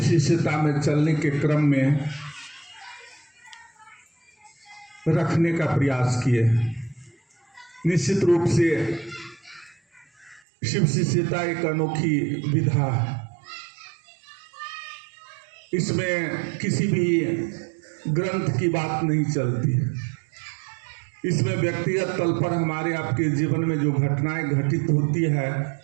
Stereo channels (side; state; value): left; drops out; at 10.4 s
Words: में चलने के क्रम में रखने का प्रयास किए। निश्चित रूप से शिव शिष्यता एक अनोखी विधा है। इसमें किसी भी ग्रंथ की बात नहीं चलती है। इसमें व्यक्तिगत तल पर हमारे आपके जीवन में जो घटनाएं घटित होती है,